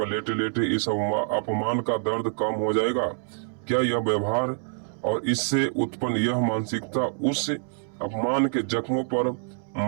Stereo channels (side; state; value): left; silent; 61 dB below the other